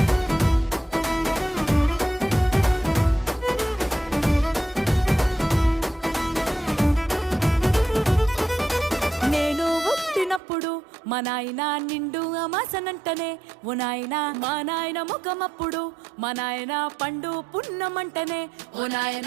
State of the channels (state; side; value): drops out; left; at 10.4 s